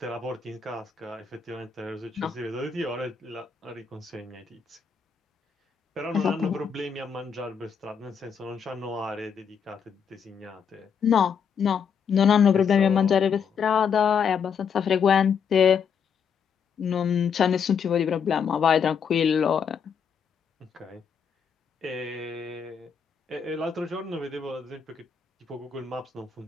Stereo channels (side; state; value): right; quieter; 6.7 dB